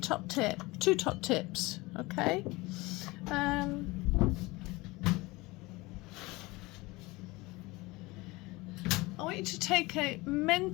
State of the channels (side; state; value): right; quieter; 22.3 dB